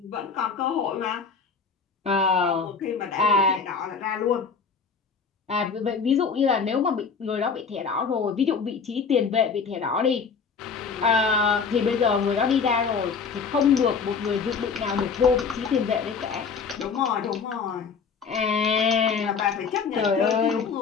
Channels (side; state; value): right; quieter; 5.5 dB